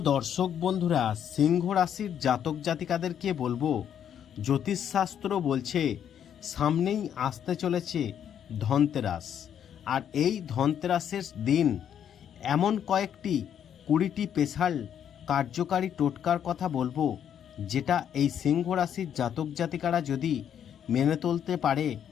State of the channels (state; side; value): quieter; right; 9.1 dB